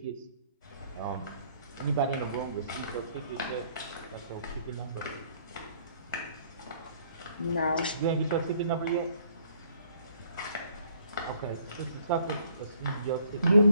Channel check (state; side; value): inverted; both; correlation -0.62